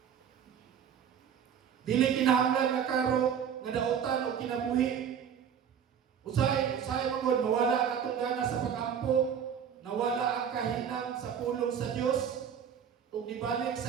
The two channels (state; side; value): quieter; left; 8.1 dB